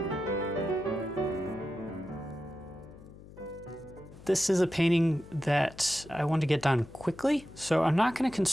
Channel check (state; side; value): noise; left; hum, 19 dB below the sound